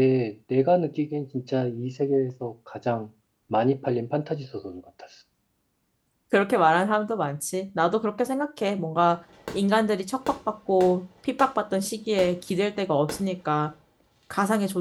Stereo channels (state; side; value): identical; both; correlation 1.00